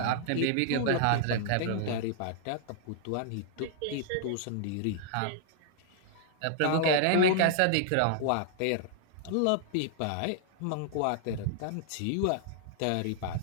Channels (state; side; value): different; both; correlation -0.01